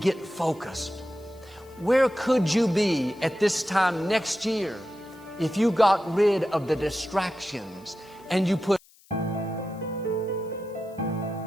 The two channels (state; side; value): noise; left; hiss, 28 dB below the sound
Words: get focused. Where could you be at this time next year if you got rid of the distractions and you put